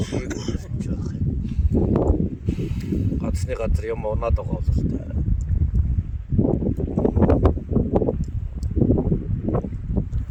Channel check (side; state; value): both; identical; correlation 1.00